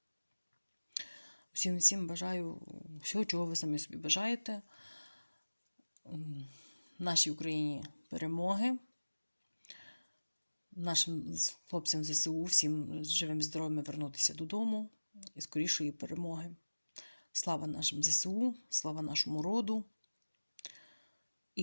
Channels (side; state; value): both; inverted; correlation -1.00